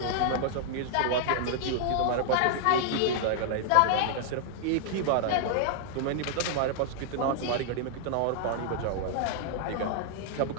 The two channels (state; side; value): different; both; correlation 0.00